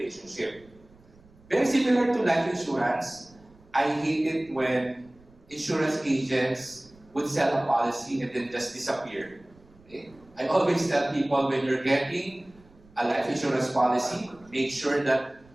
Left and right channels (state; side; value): noise; right; rumble, 27 dB below the sound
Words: Very similar to life insurance, I hate it when insurance agents would sell a policy and then just disappear. Okay? I always tell people, when you're getting a life insurance policy, make sure that